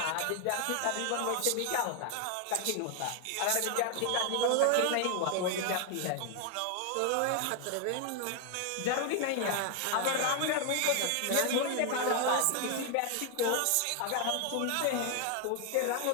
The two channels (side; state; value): both; different; correlation 0.00